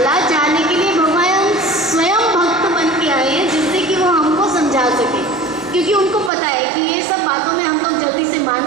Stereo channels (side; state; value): left; drops out; at 6.3 s